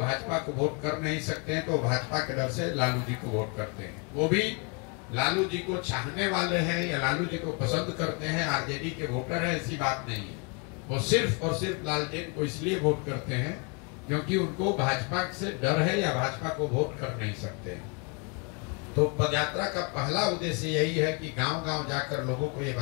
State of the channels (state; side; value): quieter; right; 32.9 dB